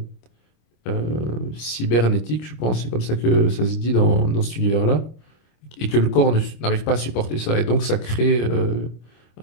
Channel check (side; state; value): right; late; 26 ms